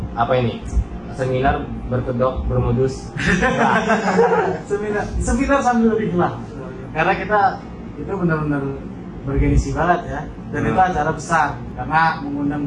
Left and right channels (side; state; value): both; identical; correlation 1.00